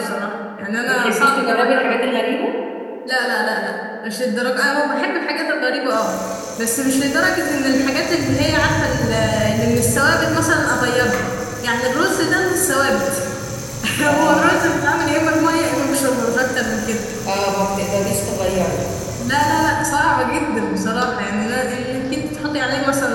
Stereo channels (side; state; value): both; identical; correlation 1.00